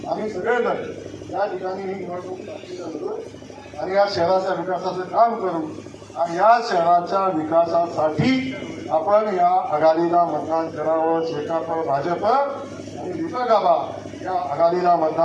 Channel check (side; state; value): both; identical; correlation 1.00